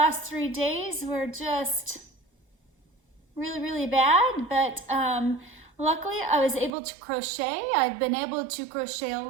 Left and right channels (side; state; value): left; drops out; at 6.7 s